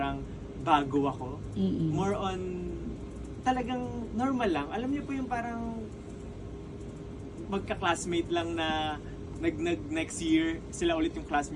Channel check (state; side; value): identical; both; correlation 1.00